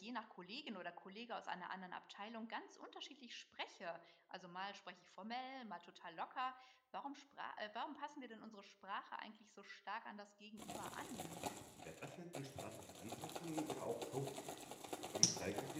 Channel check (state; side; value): identical; both; correlation 1.00